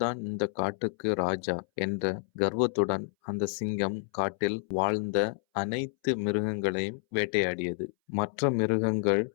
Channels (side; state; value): right; silent; 58 dB below the other